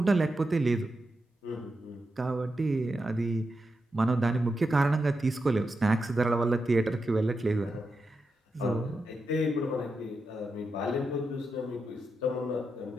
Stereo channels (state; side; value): normal; both; correlation 0.87